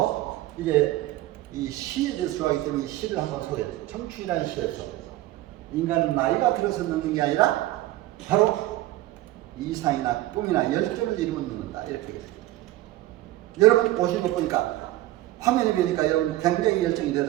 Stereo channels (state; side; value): quieter; left; 16.1 dB